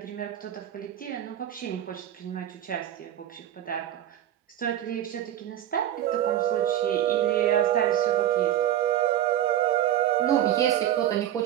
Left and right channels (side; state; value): left; quieter; 11.7 dB